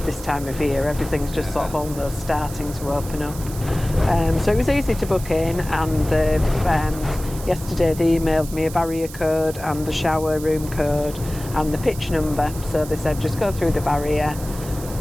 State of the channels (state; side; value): noise; right; hiss, 14 dB below the sound